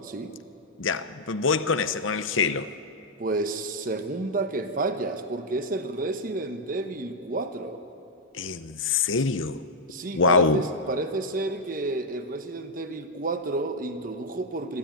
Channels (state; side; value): normal; both; correlation -0.02